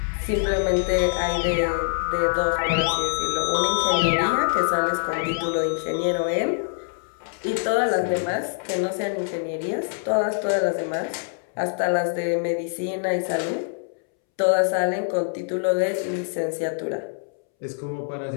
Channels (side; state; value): right; silent; 62 dB below the other